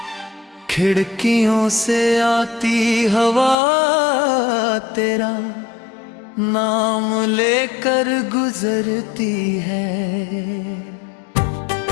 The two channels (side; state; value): right; drops out; at 3.6 s